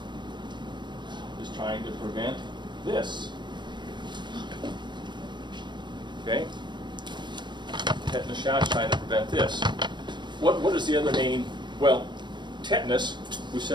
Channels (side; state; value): left; late; 0.22 ms